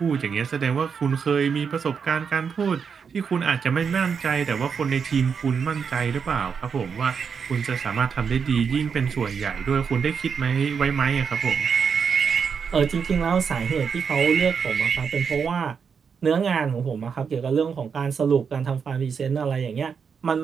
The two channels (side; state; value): left; quieter; 6.3 dB